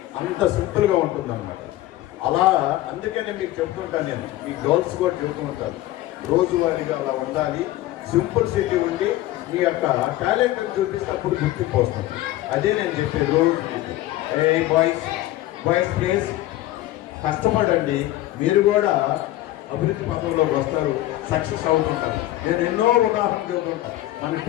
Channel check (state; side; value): quieter; right; 15.6 dB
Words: అంత సింపుల్గా ఉంటుంది అనమాట. అలా అందుకనే మీకు చెప్తుంటాను, నేను మీ గర్ల్స్ కూడా చెబుతూ ఉంటాను, రోజువారీగా అలా ఉండాలి. సింపుల్ సిటీ ఉండి మీ యొక్క టాలెంట్ని చూపిస్తేప్పుడు గుర్తింపు వస్తుంది. అదే నేను చెప్పే రోజు. బాయ్స్ ప్లీజ్ కష్టపడండి, మీరు కూడా అభివృద్ధి పథంలోకి వస్తారు, సక్సెస్ అవుతుంటారు. నేను ఎన్నో ఉదాహరణలు చెబుతుంటాను. మన